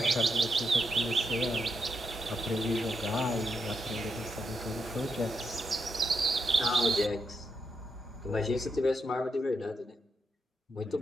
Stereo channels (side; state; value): both; normal; correlation 0.81